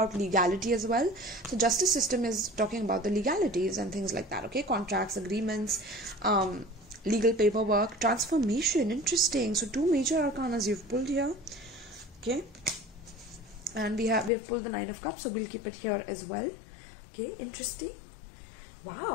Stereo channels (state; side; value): drops out; right; at 14.3 s